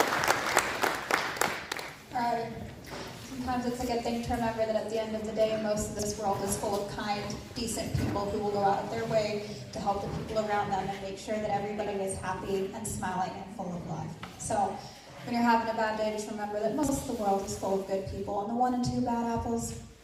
All right. Sometimes it's a good thing to remember that at the end of the day, most of this world is full of kind, decent people who will go out of their way to help the people around them and make sure that everybody is happy and smiling and full of love. So when you're having a bad day, just remember that most of the world is full of good people, and the 1 and 2 bad apples,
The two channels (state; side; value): identical; both; correlation 1.00